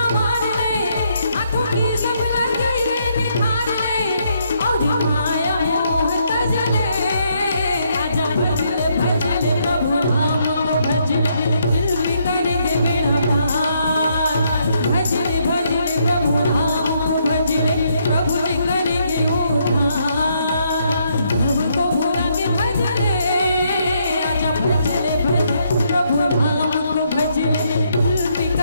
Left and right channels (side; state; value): both; inverted; correlation -0.74